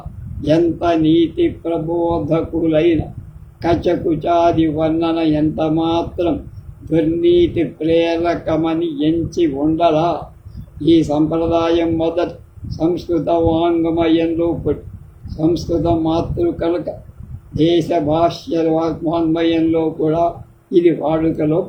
ఎంత నీతి ప్రబోధకులైన కచకుచాది వర్ణన ఎంత మాత్రం దుర్నీతి ప్రేరకమని ఎంచి ఉండలా. ఈ సంప్రదాయం మొదట సంస్కృత వాంగ్మయంలో పుట్టి సంస్కృత మాతృ కనుక దేశ భాష్య వాంగ్మయంలో కూడా ఇది వాడుకలో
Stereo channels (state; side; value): identical; both; correlation 1.00